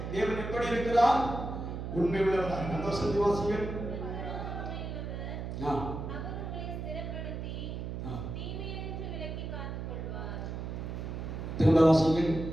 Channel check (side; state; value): right; noise; hum, 5 dB below the sound